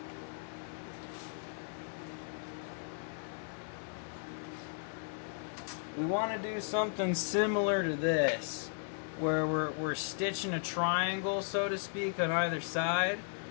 We want to do something similar to this, where we're stitching a triangle, so to speak, on either side,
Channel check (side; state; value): right; silent; 54 dB below the other